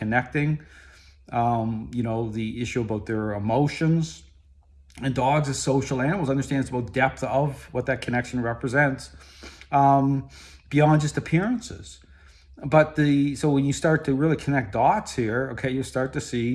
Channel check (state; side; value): identical; both; correlation 1.00